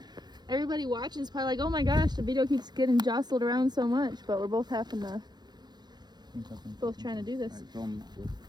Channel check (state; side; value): late; left; 0.20 ms